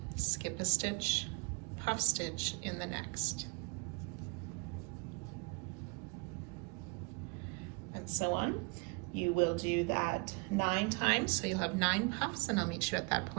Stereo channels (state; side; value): quieter; left; 30.2 dB